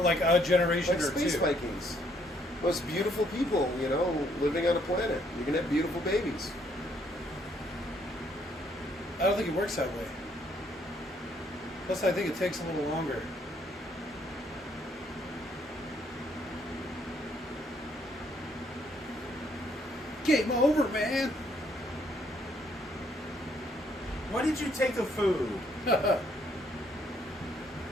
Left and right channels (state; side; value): normal; both; correlation 0.68